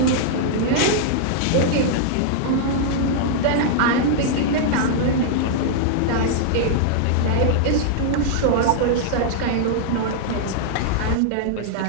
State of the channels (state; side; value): different; both; correlation -0.01